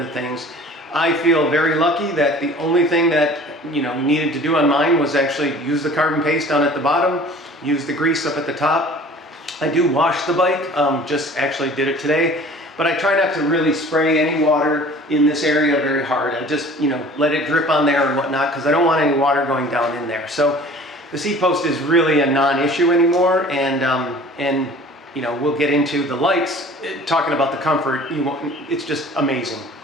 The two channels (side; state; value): both; normal; correlation 0.46